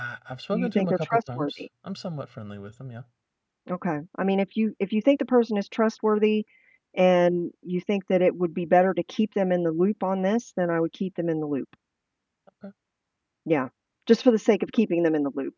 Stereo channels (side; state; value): both; identical; correlation 1.00